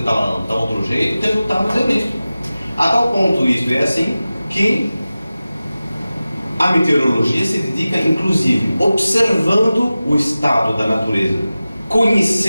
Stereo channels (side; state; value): both; inverted; correlation -0.96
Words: tal outro jeito, o resultado é nisso. A tal ponto isto é assim que a meteorologia se dedica, inclusive, observando o estado da natureza,